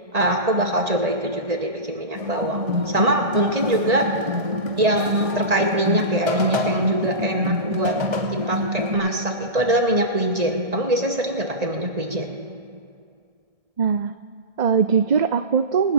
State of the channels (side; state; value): left; late; 1.6 ms